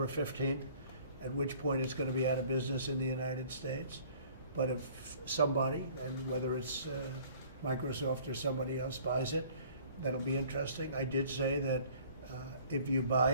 15th, at which point it's going to be out of business in the United States. But if somebody, and whether it's Microsoft or somebody else buys it, that'll be interesting. I did say that if you buy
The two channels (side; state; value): both; inverted; correlation -0.53